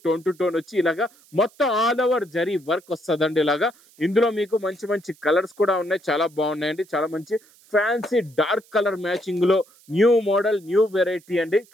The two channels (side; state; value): right; noise; hiss, 28 dB below the sound